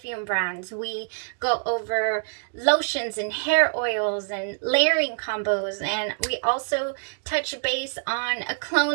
brands. We go over lotions and hair oils and layering combos. And we also touch base on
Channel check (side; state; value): left; silent; digital silence